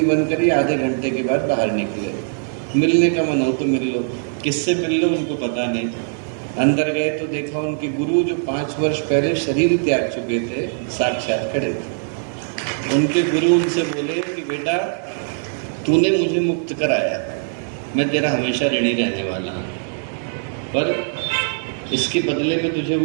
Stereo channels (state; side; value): silent; left; digital silence